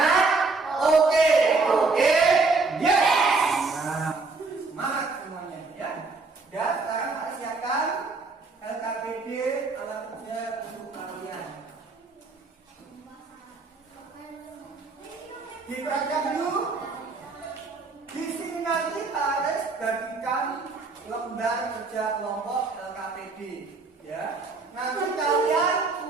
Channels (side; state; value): left; quieter; 3.9 dB